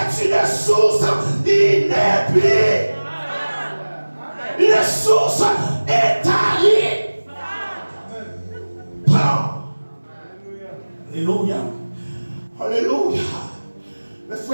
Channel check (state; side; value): inverted; both; correlation -1.00